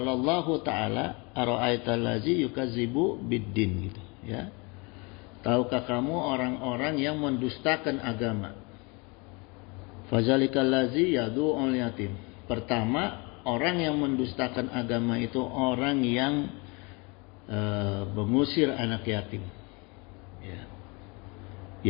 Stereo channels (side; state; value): right; quieter; 29.2 dB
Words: Allahu ta'ala ara'aital ladzi yukazzibu biddin gitu ya. Tahukah kamu orang-orang yang mendustakan agama? Fazalikal ladzi yad'ul yatim. Pertama, orang yang mendustakan agama itu orang yang mengusir anak yatim. Ya.